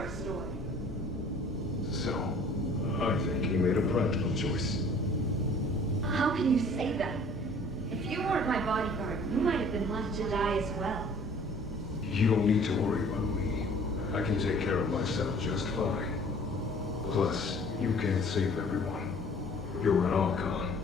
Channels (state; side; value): normal; both; correlation 0.51